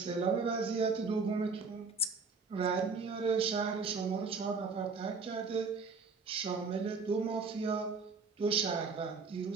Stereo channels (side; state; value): left; quieter; 4.6 dB